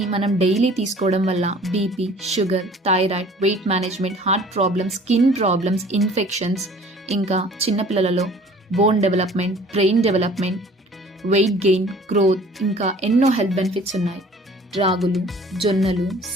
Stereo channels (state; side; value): normal; both; correlation 0.50